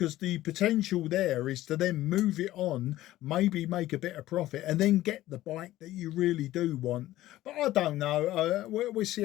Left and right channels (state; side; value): quieter; right; 15.4 dB